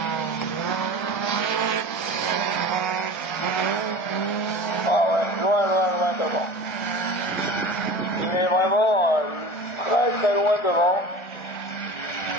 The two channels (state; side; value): late; right; 1.3 ms